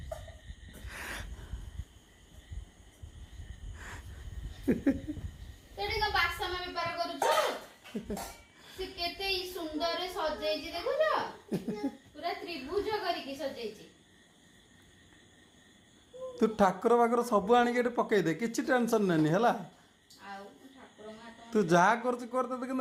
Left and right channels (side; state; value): both; identical; correlation 1.00